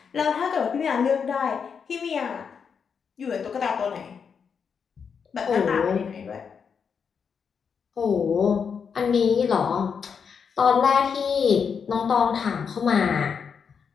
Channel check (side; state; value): right; quieter; 6.4 dB